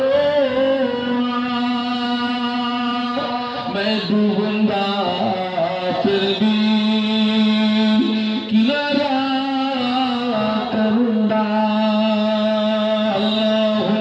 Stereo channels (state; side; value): identical; both; correlation 1.00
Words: मैं डूबूंगा फिर भी किनारा करूंगा